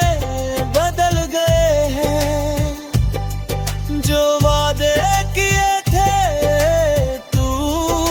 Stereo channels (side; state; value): both; identical; correlation 1.00